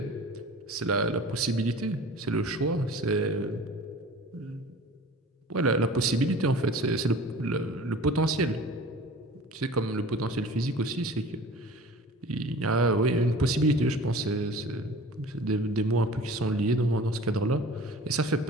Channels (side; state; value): both; normal; correlation 0.42